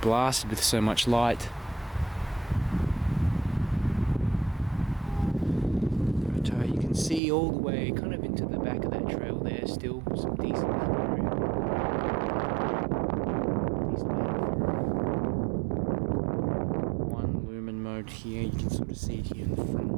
with so much light. But you can see all the way kind of into the back of that trail there, still some decent cover. One lumen mode here, you can sort of see it here in the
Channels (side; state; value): left; drops out; at 7.2 s